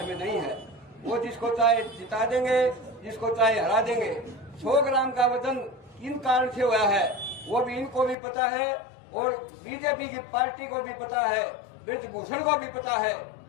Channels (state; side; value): drops out; right; at 8.2 s